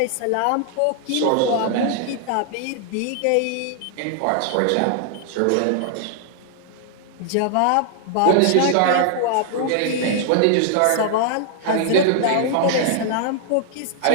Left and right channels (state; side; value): different; both; correlation -0.01